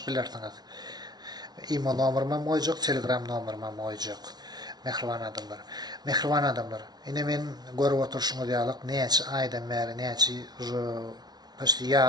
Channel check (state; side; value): late; left; 0.19 ms